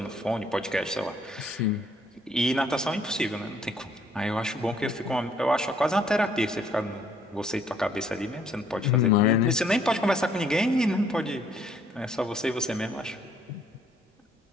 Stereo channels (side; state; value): both; normal; correlation 0.64